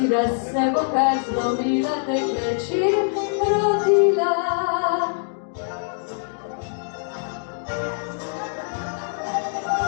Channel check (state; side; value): silent; right; digital silence